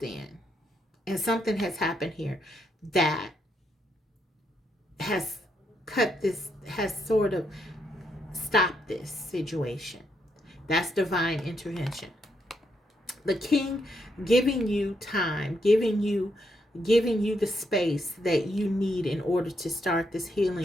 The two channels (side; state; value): both; normal; correlation 0.78